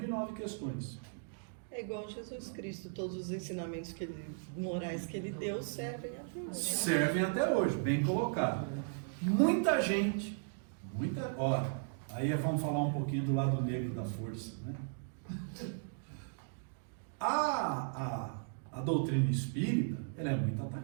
questões. É igual Jesus Cristo, todos os ensinamentos morais que ele deu servem até hoje. Servem até hoje, bem colocado. Muita gente, aí vamos falar um pouquinho do lado negro da força, né? A doutrina espírita, ela é muito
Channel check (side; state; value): left; silent; digital silence